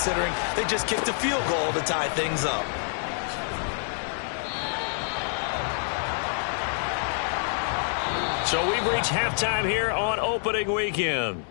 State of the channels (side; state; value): right; silent; 60 dB below the other